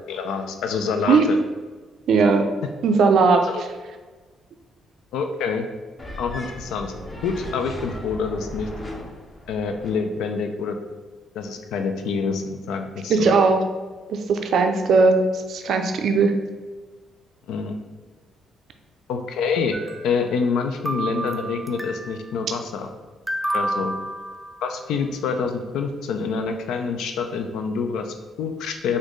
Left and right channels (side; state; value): both; normal; correlation 0.66